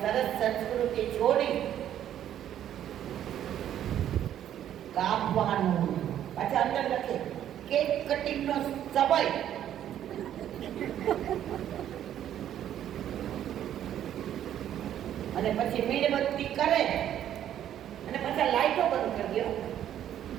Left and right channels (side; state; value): left; quieter; 10.9 dB